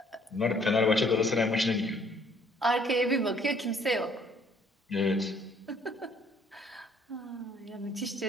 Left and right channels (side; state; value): both; normal; correlation 0.61